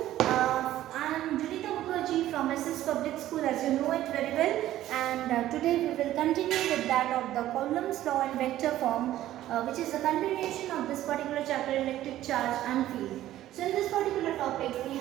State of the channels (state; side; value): quieter; left; 13.7 dB